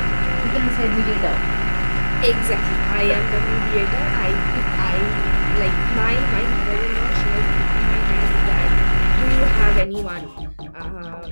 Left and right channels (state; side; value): inverted; both; correlation -1.00